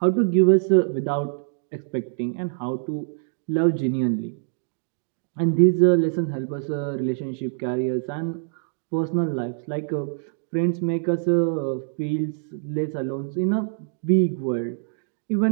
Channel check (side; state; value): left; silent; digital silence